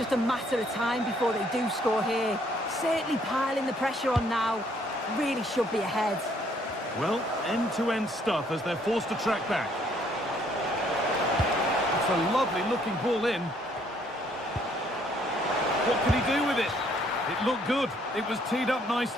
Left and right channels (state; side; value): normal; both; correlation 0.66